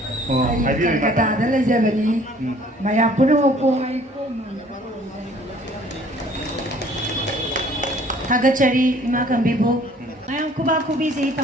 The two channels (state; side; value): normal; both; correlation 0.55